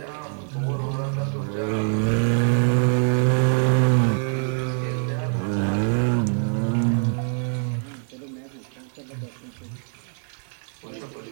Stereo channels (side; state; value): left; silent; 62 dB below the other